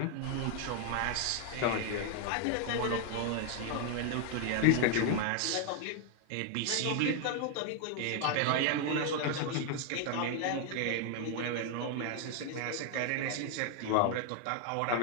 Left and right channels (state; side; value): different; both; correlation 0.00